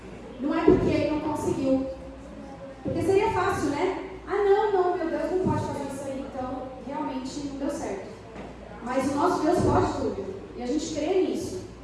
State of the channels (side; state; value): both; identical; correlation 1.00